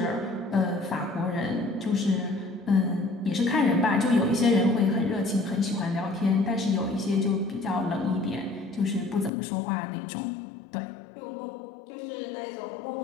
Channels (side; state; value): right; drops out; at 9.3 s